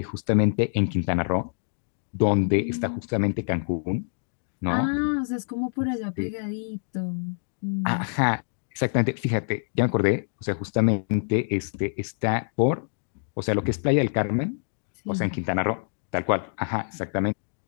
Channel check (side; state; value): right; silent; digital silence